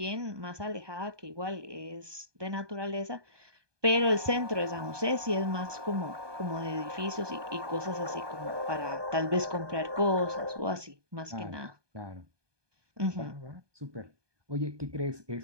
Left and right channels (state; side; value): late; left; 1.2 ms